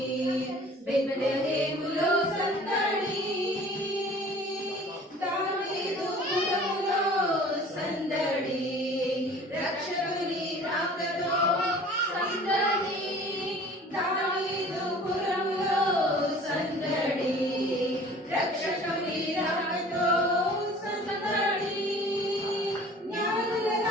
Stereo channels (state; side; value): normal; both; correlation 0.47